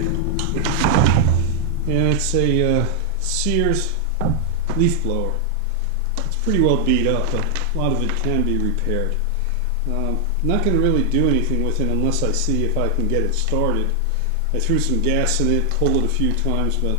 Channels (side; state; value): both; different; correlation 0.00